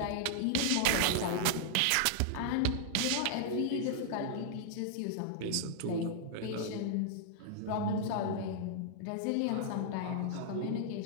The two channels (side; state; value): both; different; correlation -0.01